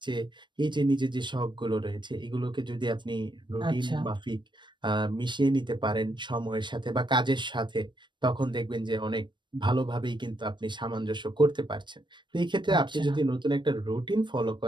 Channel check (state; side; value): late; left; 0.22 ms